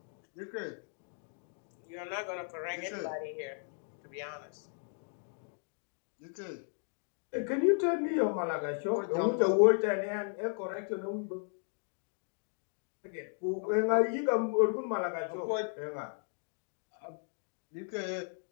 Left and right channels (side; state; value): right; silent; 54 dB below the other